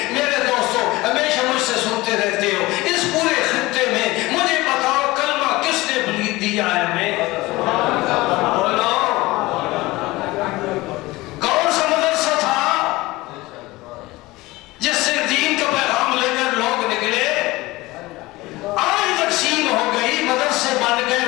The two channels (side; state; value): right; quieter; 20.2 dB